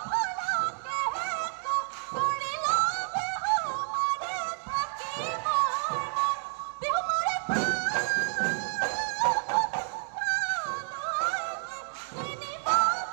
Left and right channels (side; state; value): left; silent; 57 dB below the other